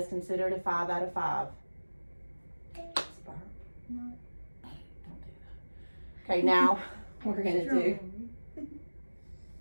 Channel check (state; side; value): inverted; both; correlation -1.00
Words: considered a 5 out of 5. No. Don't do that. Okay, now we're gonna do